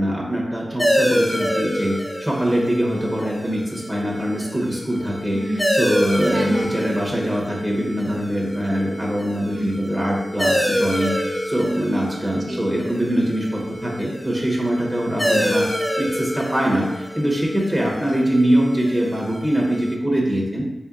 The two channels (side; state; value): both; normal; correlation 0.95